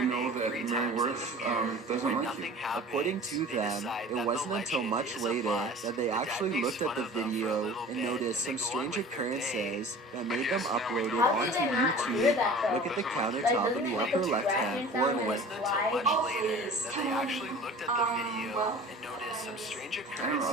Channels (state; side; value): normal; both; correlation 0.42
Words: know that Mary Worth doesn't like you. According to them, it wasn't until much later that they actually looked at the video and noticed some strange occurrences that made them upload it onto YouTube. Look at the countertop in the upper left-hand corner. I have